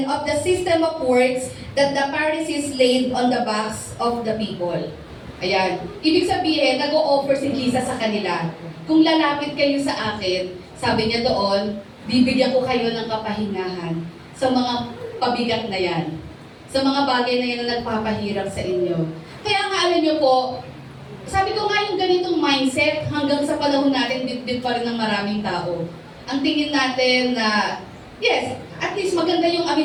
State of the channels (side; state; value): both; identical; correlation 1.00